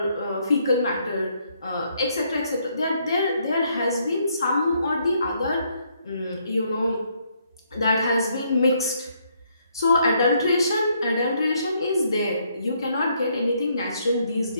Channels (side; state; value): both; inverted; correlation -0.72